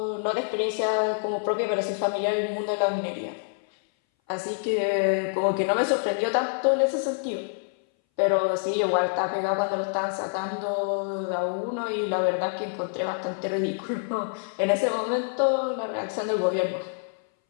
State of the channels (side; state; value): right; silent; 59 dB below the other